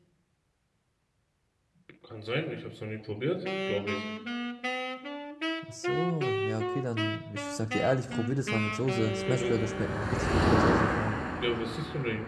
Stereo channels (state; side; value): identical; both; correlation 1.00